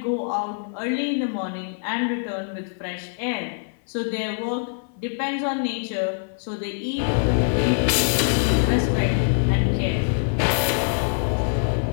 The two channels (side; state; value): right; silent; digital silence